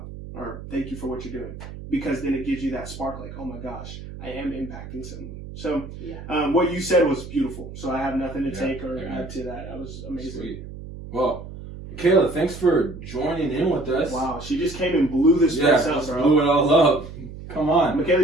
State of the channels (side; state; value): right; noise; hum, 12 dB below the sound